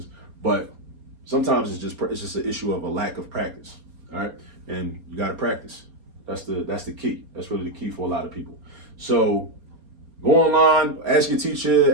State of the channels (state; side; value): late; left; 4.3 ms